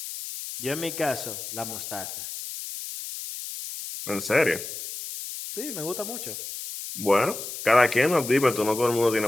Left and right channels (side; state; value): left; noise; hiss, 8 dB below the sound